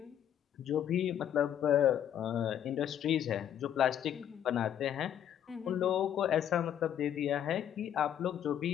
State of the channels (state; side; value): quieter; right; 10.0 dB